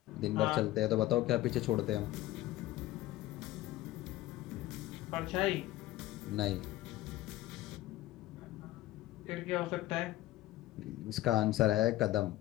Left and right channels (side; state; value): right; quieter; 15.9 dB